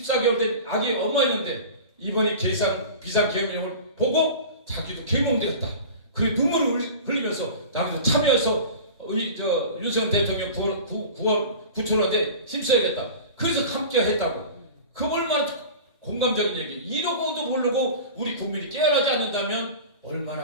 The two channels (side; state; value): both; inverted; correlation -0.36